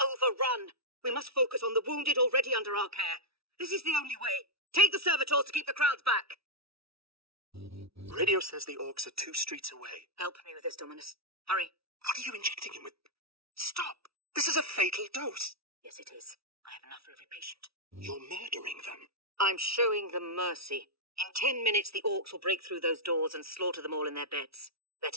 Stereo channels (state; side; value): late; left; 0.76 ms